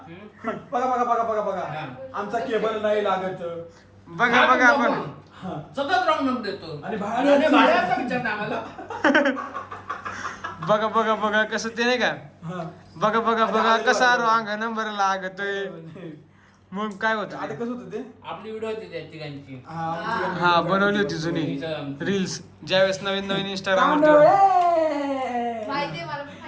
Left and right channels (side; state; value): both; identical; correlation 1.00